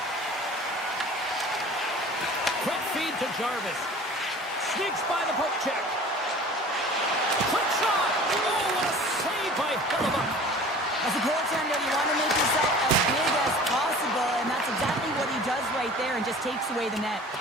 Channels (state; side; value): normal; both; correlation 0.43